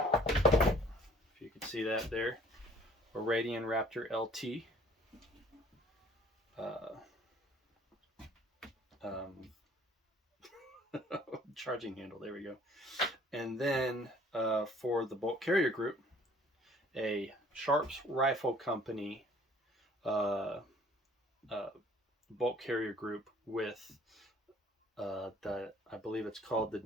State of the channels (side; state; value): both; normal; correlation 0.54